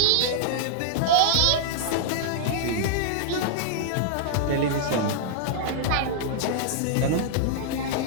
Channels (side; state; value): both; different; correlation -0.01